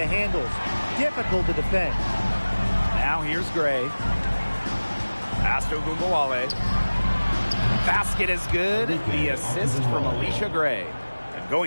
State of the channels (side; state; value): both; inverted; correlation -1.00